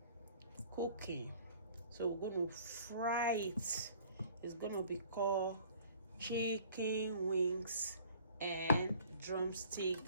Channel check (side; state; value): both; inverted; correlation -0.52